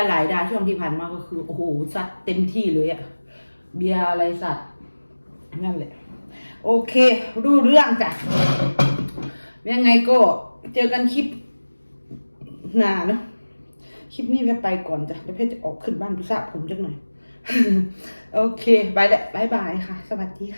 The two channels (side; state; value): both; inverted; correlation -1.00